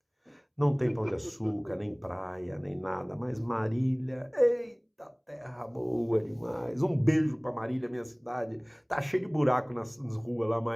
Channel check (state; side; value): identical; both; correlation 1.00